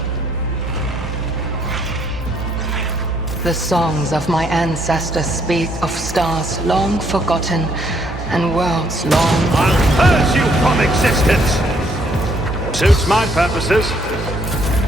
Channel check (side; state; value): both; normal; correlation 0.69